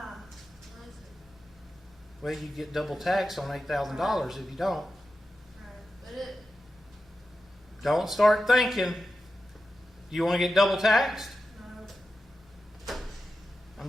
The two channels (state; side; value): normal; both; correlation 0.91